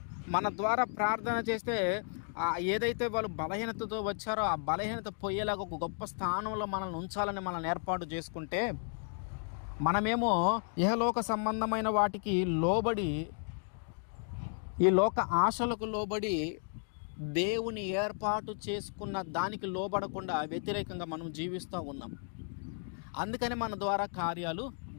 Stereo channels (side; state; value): right; silent; 55 dB below the other